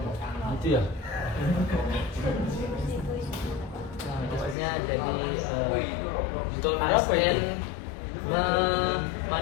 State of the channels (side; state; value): right; drops out; at 4.5 s